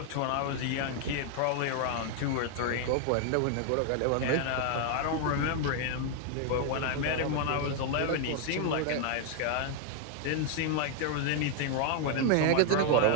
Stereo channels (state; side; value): different; both; correlation 0.00